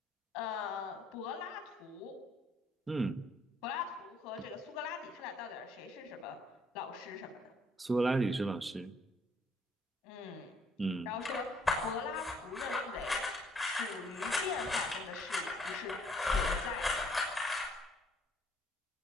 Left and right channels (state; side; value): normal; both; correlation 0.65